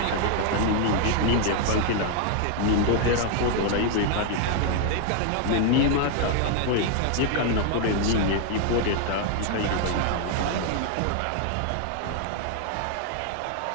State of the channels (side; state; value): both; different; correlation 0.00